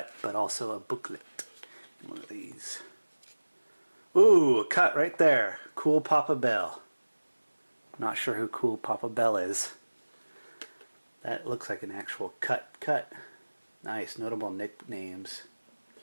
but also a booklet. One of these. Ooh, a cut right there. Cool Papa Bell. Not sure who Cool Papa Bell is. That looks like an actual cut. Nice, notable nicknames.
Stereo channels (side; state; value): both; inverted; correlation -1.00